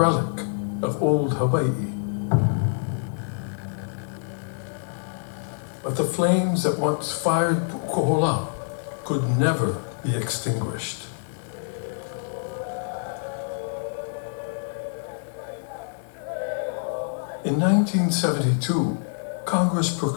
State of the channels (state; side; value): silent; right; digital silence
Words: of old Hawaii. But the flames that once fired Pu'ukohola could never be extinguished. In 1972, Congress